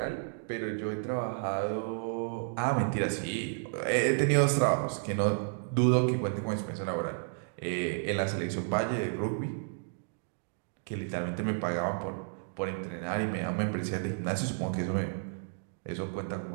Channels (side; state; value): left; silent; digital silence